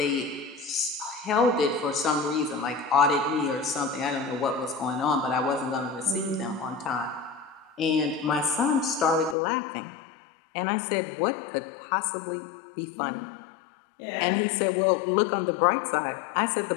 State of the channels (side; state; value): right; drops out; at 9.3 s